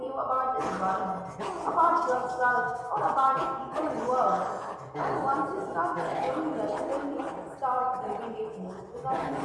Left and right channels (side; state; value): both; identical; correlation 1.00